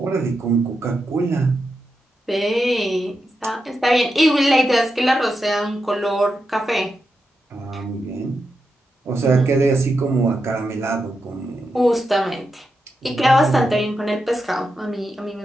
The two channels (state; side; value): normal; both; correlation 0.87